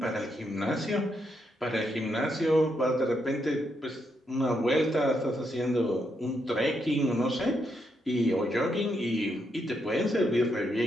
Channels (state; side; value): normal; both; correlation 0.79